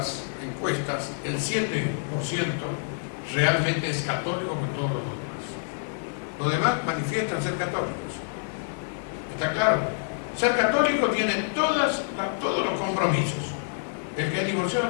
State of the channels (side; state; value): right; silent; 58 dB below the other